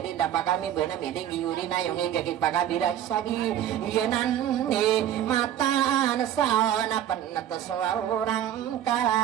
din dapat kami na miling yuri na yung igagit pagabira sagi yanan ni mata na sa na panata sa orang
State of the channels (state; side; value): quieter; left; 10.9 dB